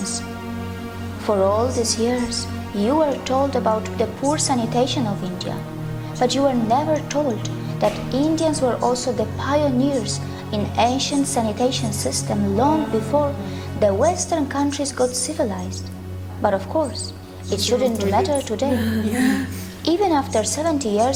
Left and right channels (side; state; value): both; identical; correlation 1.00